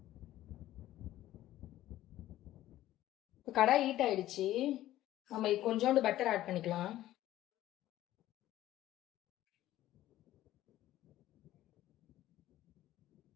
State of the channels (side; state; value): right; quieter; 14.3 dB